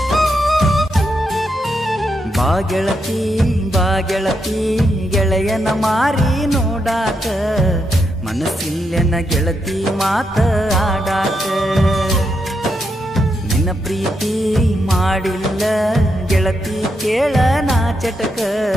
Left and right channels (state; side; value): normal; both; correlation 0.82